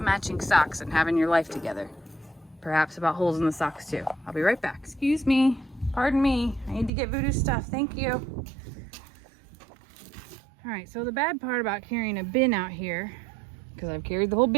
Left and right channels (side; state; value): left; drops out; at 6.9 s